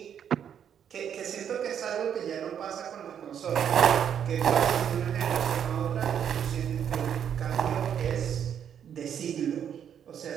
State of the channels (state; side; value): quieter; left; 8.7 dB